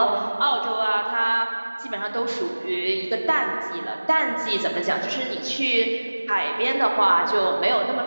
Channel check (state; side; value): inverted; both; correlation -1.00